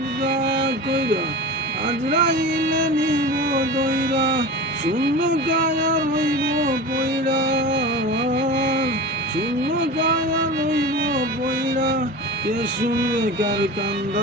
কইরা আজরাইলে নিব দইরা। শূন্য কায়া রইব পইরা, শূন্য কায়া রইব পইরা। কে শুনবে কার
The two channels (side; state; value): both; normal; correlation 0.31